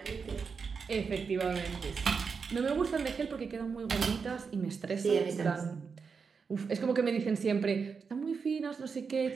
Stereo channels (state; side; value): quieter; left; 5.5 dB